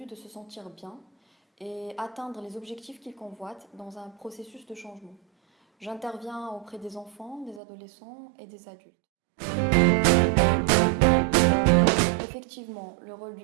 de se sentir bien et atteindre les objectifs qu'il convoite dans un processus de changement. J'interviens auprès des enfants, des adolescents et des adultes. Effectivement, le rôle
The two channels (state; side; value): drops out; left; at 7.6 s